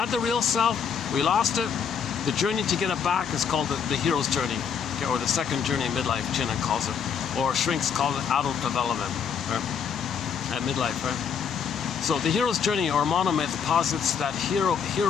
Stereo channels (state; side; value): quieter; right; 7.0 dB